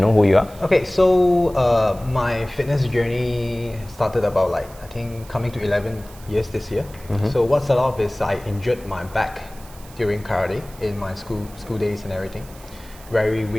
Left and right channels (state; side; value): noise; right; hiss, 22 dB below the sound